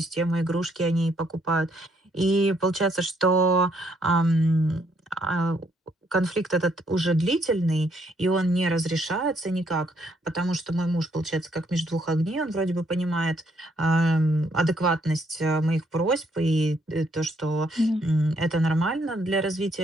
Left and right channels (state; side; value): normal; both; correlation 0.71